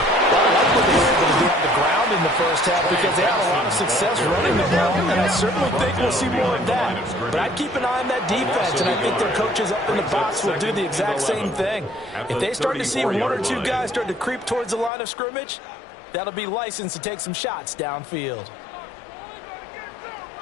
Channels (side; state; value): right; drops out; at 14.9 s